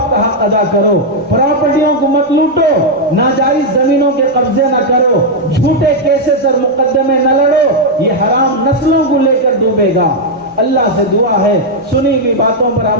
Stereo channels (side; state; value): both; normal; correlation -0.01